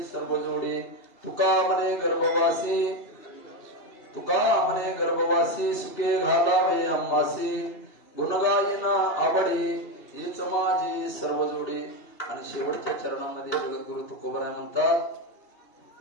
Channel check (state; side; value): late; right; 2.8 ms